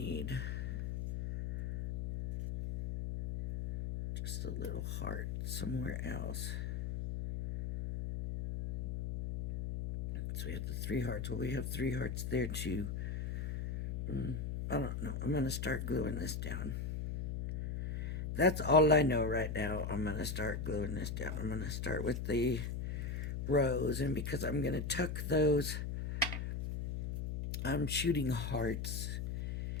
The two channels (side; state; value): left; noise; hum, 3 dB below the sound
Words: just a little heart somewhere else. So we have the 3 hearts. Well, we have 3 hearts there too. I don't know. I'm going to start gluing this down. That's all I know right now. I'm going to start gluing this down. I'm going to start with the rose. And because I'm going to tuck those, I'm shooting hearts